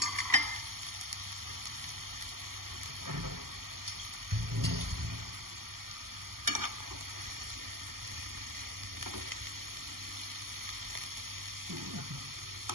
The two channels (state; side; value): late; left; 0.92 ms